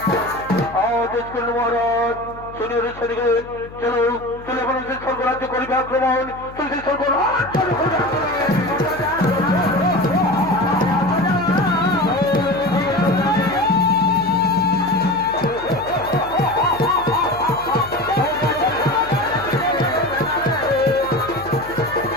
আদেশ করল মহারাজ। শুনিয়ে ছেলেগণ, চলো চলে এখন সেই স্বর্গরাজ্য করিবে আক্রমণ, তুমি সেই স্বর্গরাজ্য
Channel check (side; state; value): left; noise; hum, 17 dB below the sound